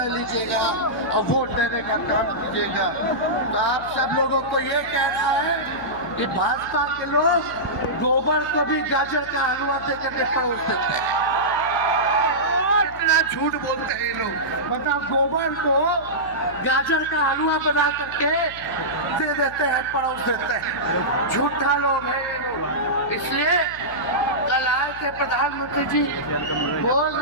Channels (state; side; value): noise; left; hum, 19 dB below the sound